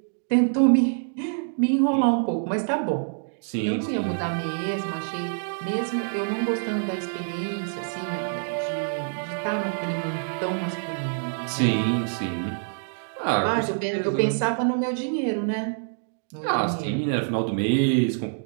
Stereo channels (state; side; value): silent; left; digital silence